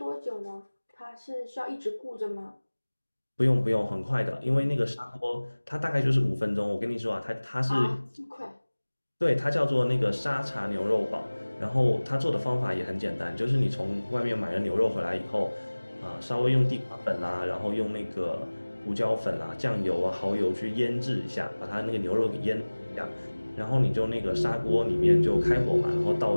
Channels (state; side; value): inverted; both; correlation -1.00